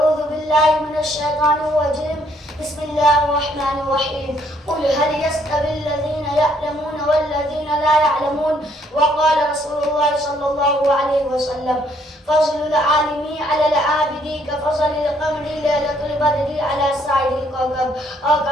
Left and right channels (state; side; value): normal; both; correlation 0.67